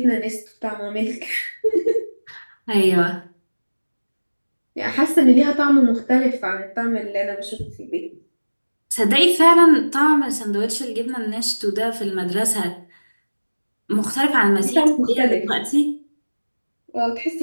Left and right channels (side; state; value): both; inverted; correlation -1.00